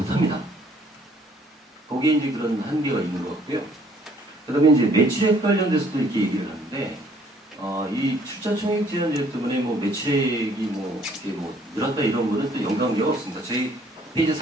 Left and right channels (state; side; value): normal; both; correlation 0.61